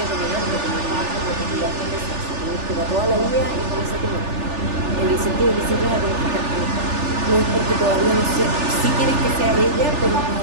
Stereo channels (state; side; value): late; left; 3.4 ms